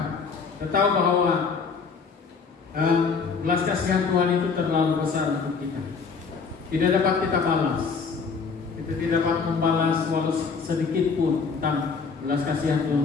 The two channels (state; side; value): quieter; right; 5.2 dB